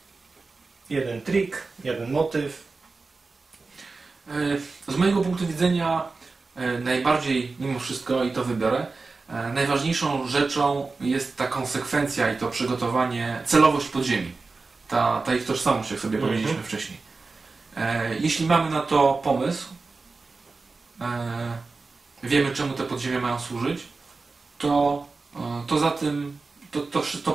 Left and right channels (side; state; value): left; quieter; 4.0 dB